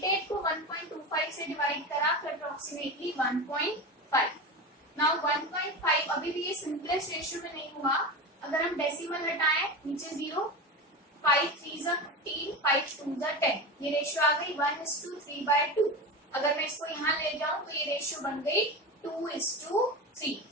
को 1.25 से डिवाइड करा फिर अप्रोक्सीमेटली 1.5। नाउ 1.5 अभी भी ये सिंपलेस्ट रेशियो में नहीं हुआ, अगर हम डेसिमल हटाएं नीचे 0, 5 3 15, 5 2 10, ये रेशियो आ गई 1:3/2। अगर मैं इसको यहाँ ले जाऊं तो ये रेशियो बन गई 2:3।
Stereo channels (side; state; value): both; normal; correlation 0.25